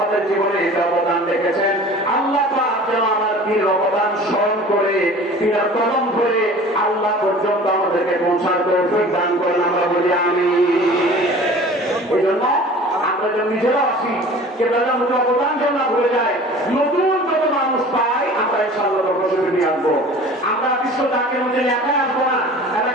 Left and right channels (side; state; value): both; normal; correlation 0.43